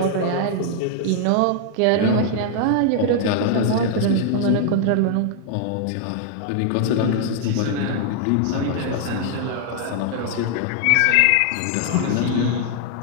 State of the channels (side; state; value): both; different; correlation 0.00